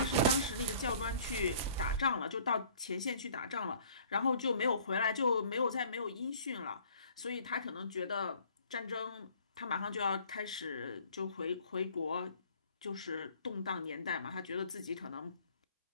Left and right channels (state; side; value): inverted; both; correlation -0.54